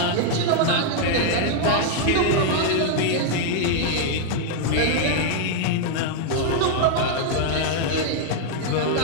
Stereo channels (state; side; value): different; both; correlation 0.00